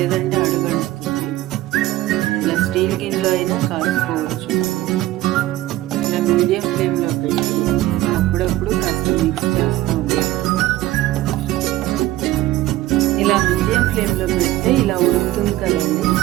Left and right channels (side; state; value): left; quieter; 15.9 dB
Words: అడుగంటుతుంది. ఇలా స్టీల్ గిన్నెలో అయినా కాసుకోవచ్చు. ఇలా మీడియం ఫ్లేమ్లో పెట్టి అప్పుడప్పుడు కాస్త మిక్స్ చేస్తూ ఉండాలి. ఇలా మీడియం ఫ్లేమ్లో పెడితే ఇలా ఉడుకుతుంది కదండి,